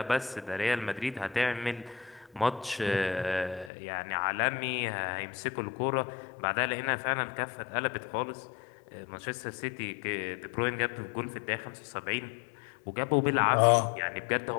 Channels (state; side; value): drops out; right; at 3.7 s